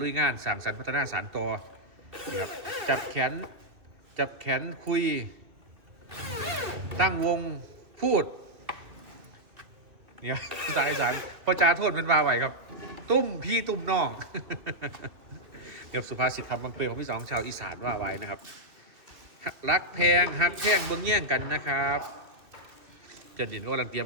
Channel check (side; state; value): left; late; 2.6 ms